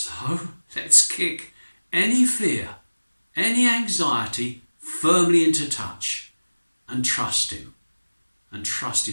let's kick any fear, any anxiety firmly into touch and trust him, and trust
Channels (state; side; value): inverted; both; correlation -1.00